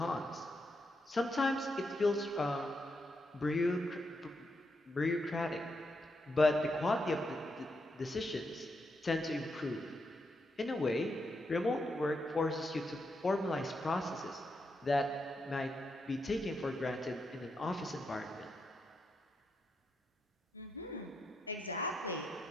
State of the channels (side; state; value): both; normal; correlation 0.82